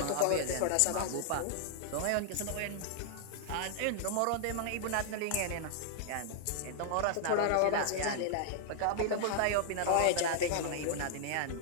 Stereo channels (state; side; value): different; both; correlation -0.01